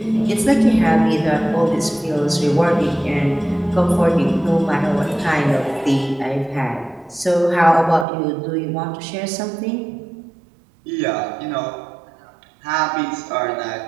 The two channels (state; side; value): drops out; left; at 8.1 s